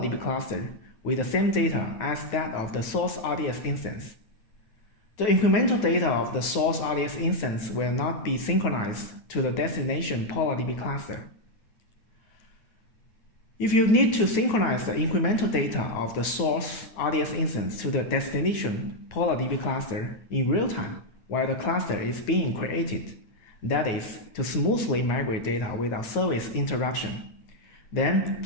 cluster with the same data as that of the source RDS instance. The incremental data of the source RDS instance will not be synchronized to the destination PolarDB cluster. If you need to synchronize the incremental data of the source RDS instance to the destination PolarDB cluster in real time while the cluster is being created, that is, to smoothly migrate data without service interruption, then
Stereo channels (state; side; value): late; right; 9.2 ms